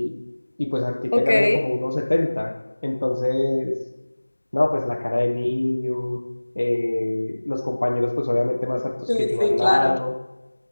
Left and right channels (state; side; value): inverted; both; correlation -1.00